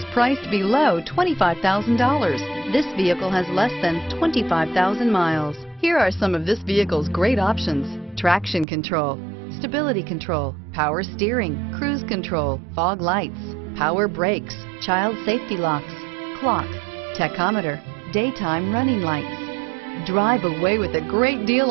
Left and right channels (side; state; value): left; drops out; at 8.7 s